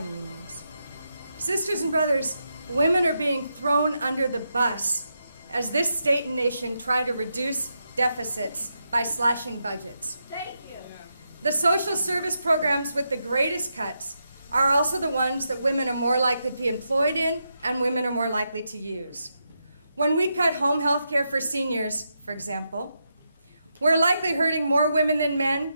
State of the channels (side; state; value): both; inverted; correlation -0.84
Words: unions. Sisters and brothers, women are being thrown under the bus as this state and nation try to reduce deficits by slashing budgets. Thank you. The social service programs with the greatest cuts are also the ones that women are more likely to be employed in and women are more likely to use. When we cut home health care for seniors, for example, we're likely hurting more women than men,